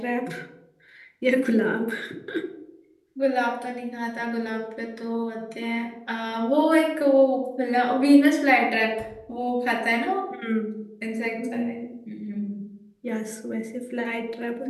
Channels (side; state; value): both; identical; correlation 1.00